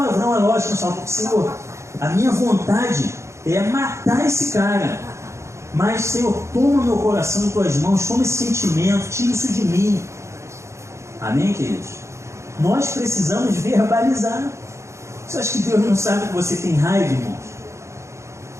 é lógico, só porque, Senhor, a minha vontade é matar esse cara, mas, Senhor, toma meu coração em tuas mãos, toma esse sentimento, tira isso de mim. Amém, queridos? Nós precisamos verbalizar. Você acha que Deus não sabe que você tem raiva, irmãos?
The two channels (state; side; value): late; left; 0.14 ms